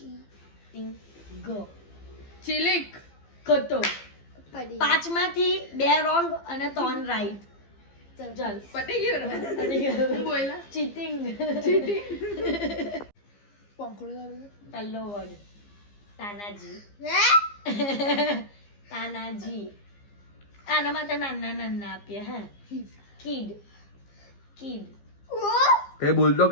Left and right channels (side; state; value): right; late; 15 ms